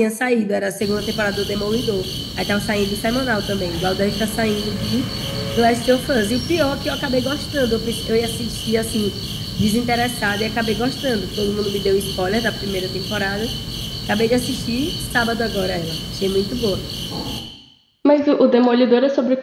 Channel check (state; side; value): identical; both; correlation 1.00